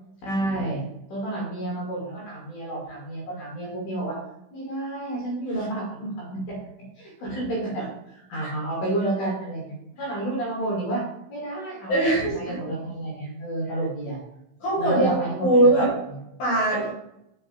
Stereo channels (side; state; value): right; late; 16 ms